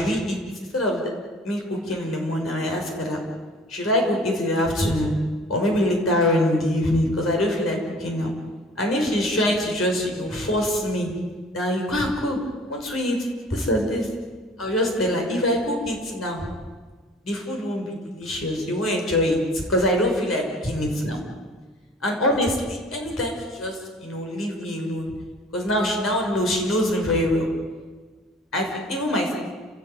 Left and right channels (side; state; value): both; normal; correlation 0.49